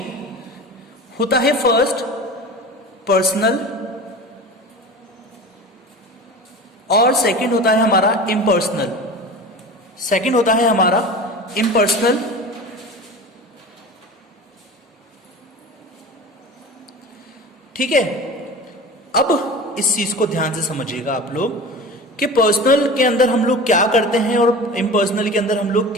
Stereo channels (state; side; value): normal; both; correlation 0.34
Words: होता है फर्स्ट पर्सनल और सेकंड होता है हमारा इम्पर्सनल। सेकंड होता है हमारा इम्पर्सनल। ठीक है, अब इस चीज को ध्यान से समझिएगा आप लोग कि पर्सनल के अंदर हम लोग क्या करते हैं और इम्पर्सनल के अंदर हम लोग